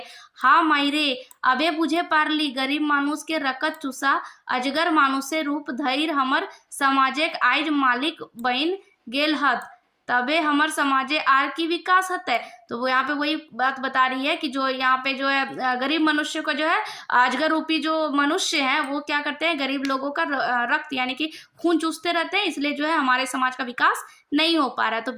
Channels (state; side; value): identical; both; correlation 1.00